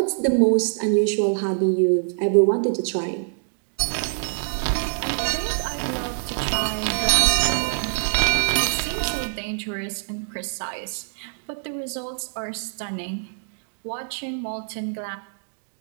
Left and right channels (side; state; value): left; silent; digital silence